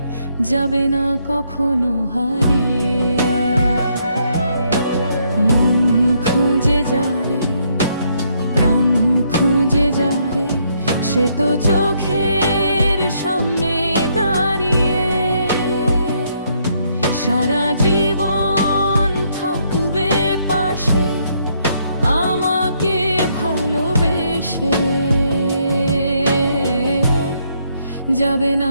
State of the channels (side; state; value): both; inverted; correlation -0.72